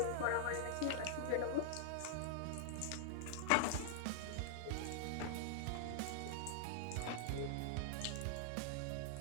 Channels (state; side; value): different; both; correlation -0.01